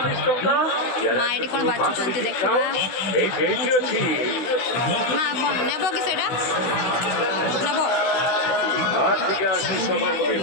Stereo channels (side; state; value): right; late; 16 ms